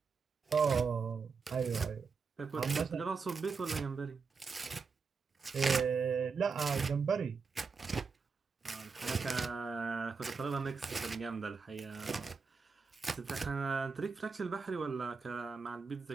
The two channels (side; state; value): left; quieter; 5.1 dB